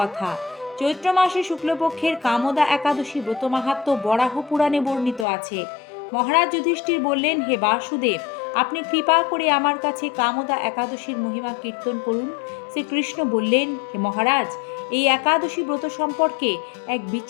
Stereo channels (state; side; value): drops out; right; at 5.2 s